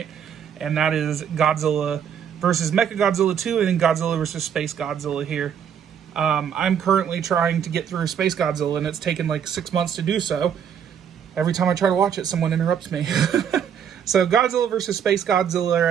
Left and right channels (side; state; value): left; quieter; 8.2 dB